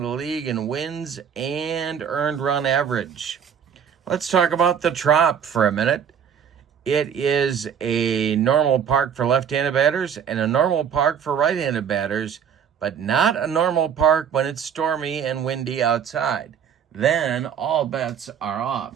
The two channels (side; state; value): left; quieter; 7.9 dB